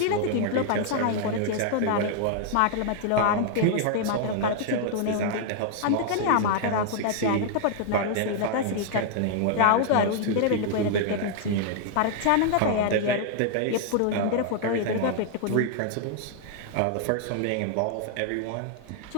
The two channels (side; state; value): both; different; correlation 0.00